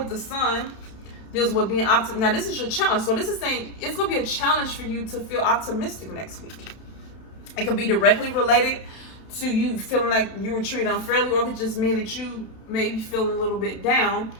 the sun, deals with being optimistic. Now this is your challenge. So this is saying it's going to be a challenge for you to feel optimistic next week. It could be directly related to you feeling like you were treated unfairly, or it could just mean that you may be feeling a little bit down.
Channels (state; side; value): late; right; 32 ms